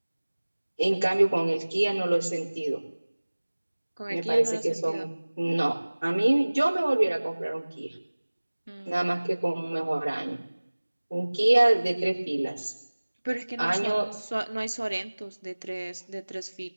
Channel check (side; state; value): both; inverted; correlation -1.00